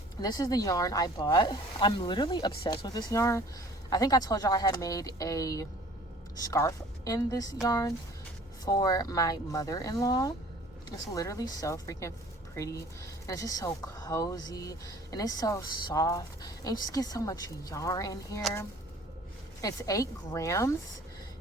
This is the yarn I bought. I'm literally obsessed with this yarn. I think I told y'all I had made a scarf in this yarn for my mother-in-law. It's literally so freaking pretty, and it's just so cozy, and it's so soft, and you just get so much yarn in here. It's 8 grams.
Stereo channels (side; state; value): both; normal; correlation 0.50